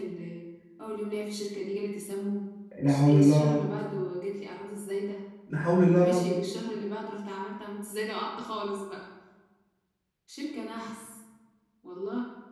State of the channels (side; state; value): both; identical; correlation 1.00